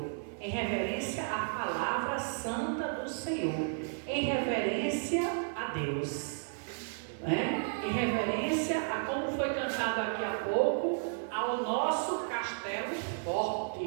em reverência à palavra santa do Senhor, em reverência a Deus, né? Em reverência a como foi cantado aqui há pouco, ao nosso castelo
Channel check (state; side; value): silent; left; 56 dB below the other